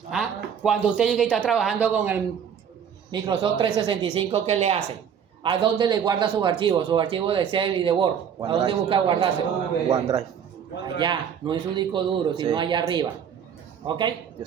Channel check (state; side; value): quieter; left; 8.0 dB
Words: ¿Ah? Cuando usted llega y está trabajando con el Microsoft 365, ¿qué le hace? ¿A dónde le guarda sus archivos? Sus archivos de Excel y de Word. ¿A dónde busca guardarse? OneDrive. Allá, no en su disco duro, sino allá arriba. ¿Ok? Yo